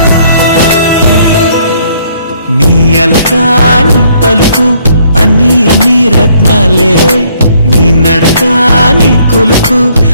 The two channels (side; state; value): both; inverted; correlation -0.65